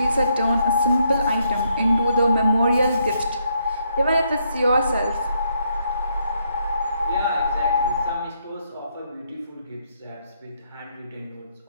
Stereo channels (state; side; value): inverted; both; correlation -0.74